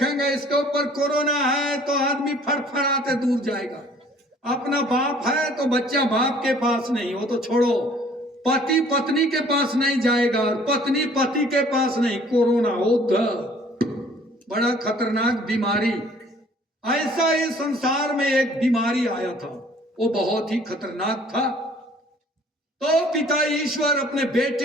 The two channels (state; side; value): normal; both; correlation 0.55